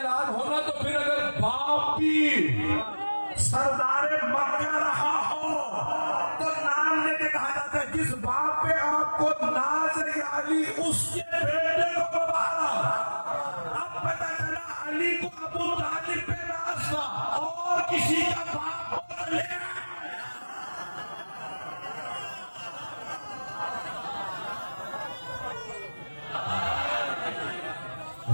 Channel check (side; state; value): both; inverted; correlation -1.00